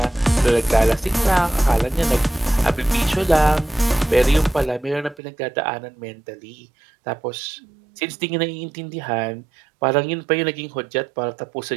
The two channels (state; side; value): drops out; left; at 5.2 s